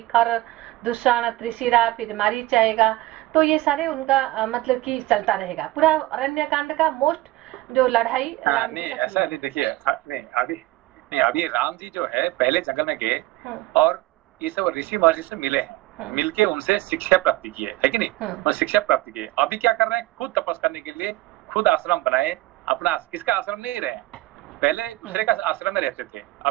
खर, दुष्ण, त्रिशिरा, फिर मारीच आएगा। तो ये सारे उनका मतलब कि चलता रहेगा पूरा अरण्य कांड का मोस्ट जो लड़ाई। नहीं ऐसा नहीं, देखिए अभी राम जी जो है पहले जंगल में गए और ये सब ऋषि महर्षि से मिले हैं, मिलके उनसे शिक्षा प्राप्ति की है कि नहीं? और शिक्षा प्राप्ति की। अभी क्या कर रहे हैं? खुद तपस्या करने के लिए खुद आश्रम बनाए। अपना किसका आश्रम नहीं रहे, पहले दूसरे का आश्रम में रहते थे,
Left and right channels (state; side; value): quieter; left; 18.2 dB